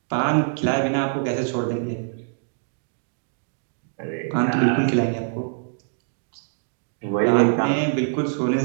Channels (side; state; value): left; silent; digital silence